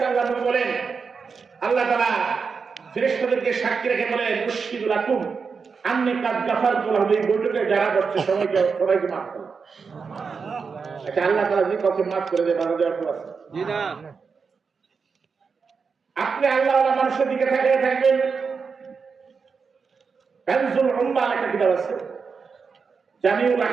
আলাইহি বলেন আল্লাহ তাআলা ফেরেশতাদেরকে সাক্ষী রেখে বলেন মুশহিদু লাকুম আন্নী কাদ গাফারতু লাহুম, এই বৈঠকে যারা বসছে সবাইকে মাফ করে। আচ্ছা, আল্লাহ তাআলা যদি কাউকে মাফ করে দেয় বাধা দেওয়ার কেউ আছে? জি না। আপনি আল্লাহওয়ালা মানুষের দিকে তাকিয়ে থাকবেন। কানজুল উম্মাহ একটা কিতাব আছে, জামিউল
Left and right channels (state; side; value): quieter; left; 5.4 dB